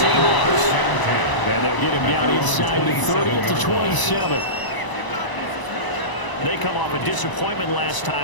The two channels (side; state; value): right; late; 1.0 ms